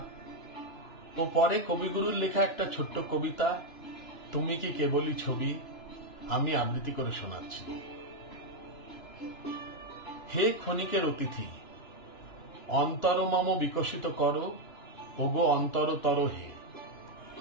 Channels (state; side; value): late; right; 2.9 ms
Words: ও পরে কবিগুরুর লেখা একটা ছোট্ট কবিতা তুমি কি কেবলই ছবি আমি আবৃত্তি করে শোনাচ্ছি। হে ক্ষণিকের অতিথি, অন্তর মম বিকশিত করো, ওগো অন্তরতর হে,